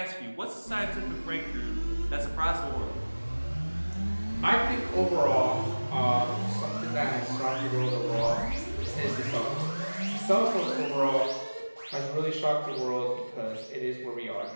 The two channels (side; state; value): both; inverted; correlation -1.00